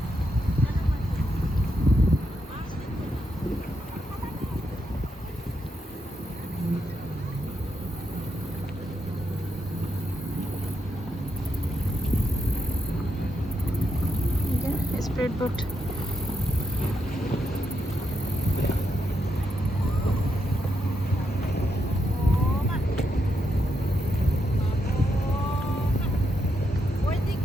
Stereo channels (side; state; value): both; normal; correlation 0.82